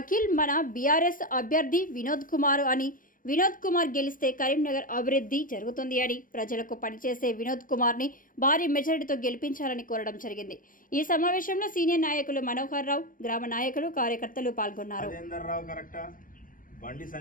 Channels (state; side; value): late; right; 0.40 ms